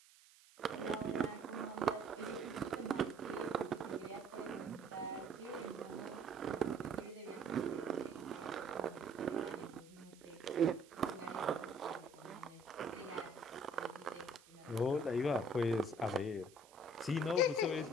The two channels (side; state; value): right; noise; hiss, 24 dB below the sound